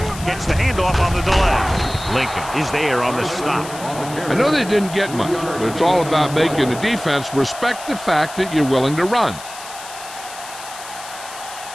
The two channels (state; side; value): noise; left; hiss, 14 dB below the sound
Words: Gets the handoff on the delay. Lincoln is there on the stop. I know they didn't get much, but it's all about making the defense respect the fact that you're willing to run.